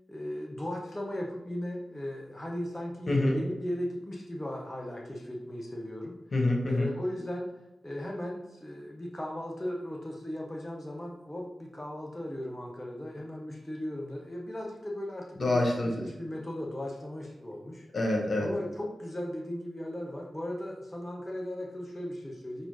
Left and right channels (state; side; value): normal; both; correlation 0.94